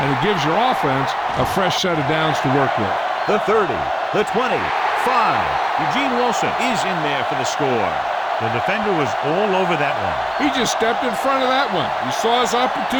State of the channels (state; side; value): identical; both; correlation 1.00